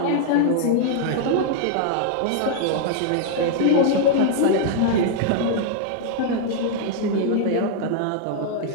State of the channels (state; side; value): different; both; correlation -0.01